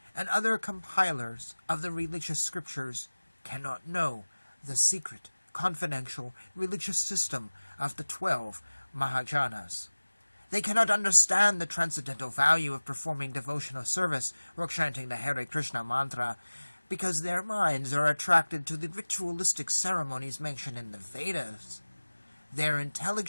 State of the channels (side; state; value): both; inverted; correlation -1.00